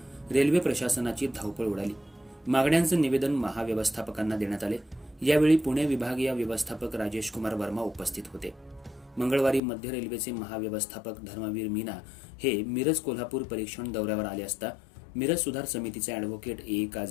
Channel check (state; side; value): drops out; right; at 9.6 s